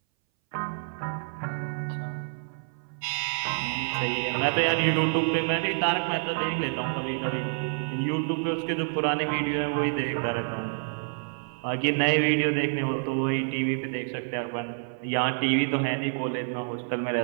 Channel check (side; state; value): left; silent; 59 dB below the other